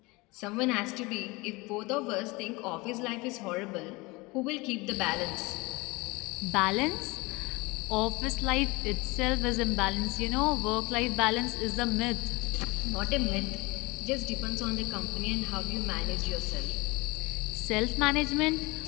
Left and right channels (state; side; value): quieter; right; 23.9 dB